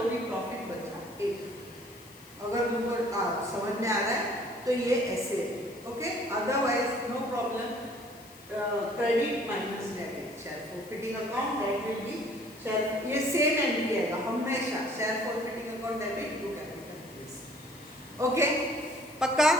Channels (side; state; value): left; noise; hiss, 22 dB below the sound